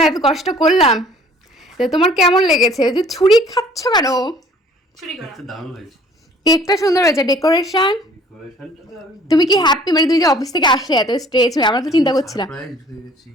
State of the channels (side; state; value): both; normal; correlation 0.54